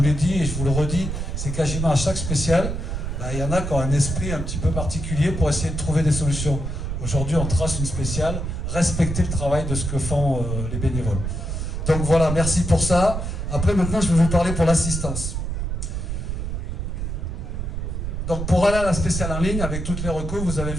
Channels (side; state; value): right; noise; rumble, 3 dB below the sound